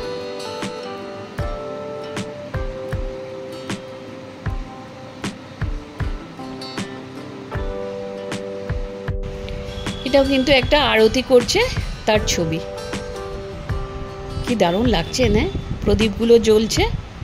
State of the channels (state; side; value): identical; both; correlation 1.00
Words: এটাও কিন্তু একটা আরতি করছে তার ছবি, কি দারুণ লাগছে না, প্রদীপগুলো জ্বলছে,